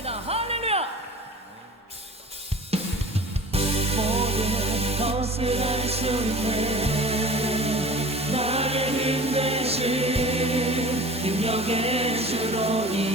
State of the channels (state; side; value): normal; both; correlation 0.40